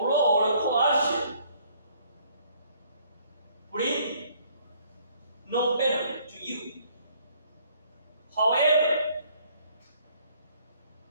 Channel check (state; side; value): inverted; both; correlation -0.63